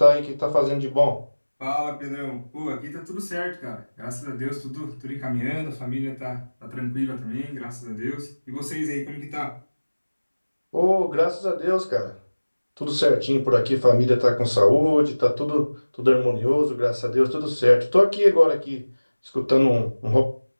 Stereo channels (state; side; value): inverted; both; correlation -1.00